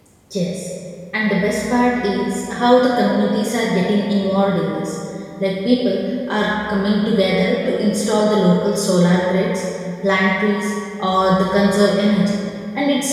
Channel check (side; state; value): both; identical; correlation 1.00